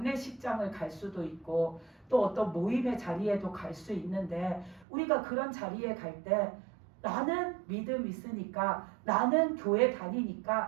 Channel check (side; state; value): left; drops out; at 4.9 s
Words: 갈 수도 있고 또 어떤 모임의 자리에도 갈 수 있는데 우리가 그런 자리에 갈 때 나는 믿음 있으니까 나는 교회